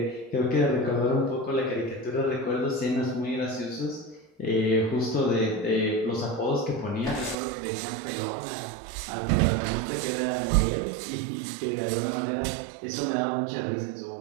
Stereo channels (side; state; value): left; drops out; at 7.4 s